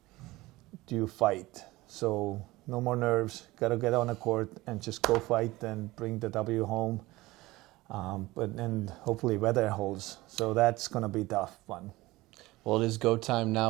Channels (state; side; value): quieter; left; 19.4 dB